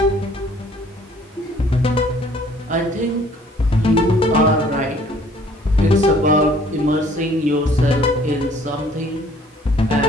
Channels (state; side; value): normal; both; correlation 0.57